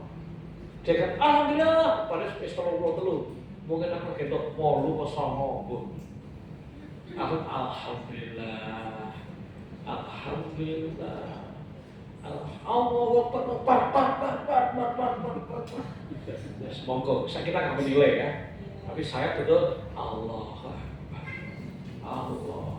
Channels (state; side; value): identical; both; correlation 1.00